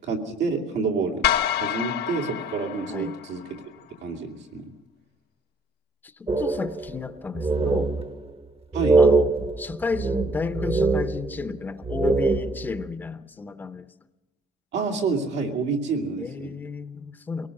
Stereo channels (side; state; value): both; normal; correlation 0.60